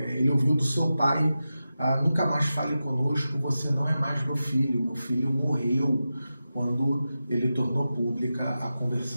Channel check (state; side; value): inverted; both; correlation -0.92